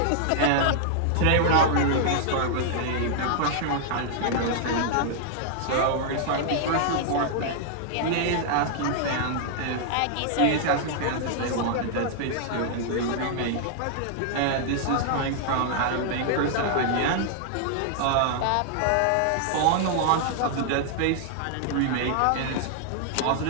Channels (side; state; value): both; different; correlation -0.01